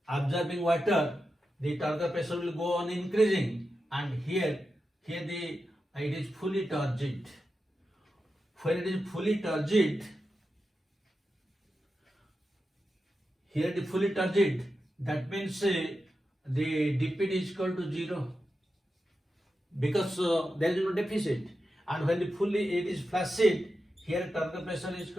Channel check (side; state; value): both; normal; correlation 0.90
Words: absorbing water, the Turgor pressure will go on increasing, and here it is fully turgid. When it is fully turgid, here it is fully turgid, that means the DPD is equal to 0, because there is no deficit. And when it is flaccid, here Turgor pressure is